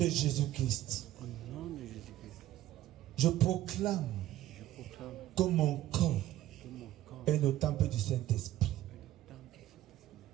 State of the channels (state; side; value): quieter; left; 14.2 dB